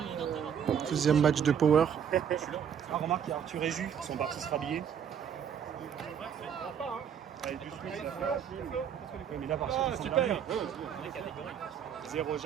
Deuxième match de Power. Ah, remarque, il y a Arthur et Jus qui sont partis se rhabiller. Mais là, par contre, super. 0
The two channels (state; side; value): quieter; left; 8.3 dB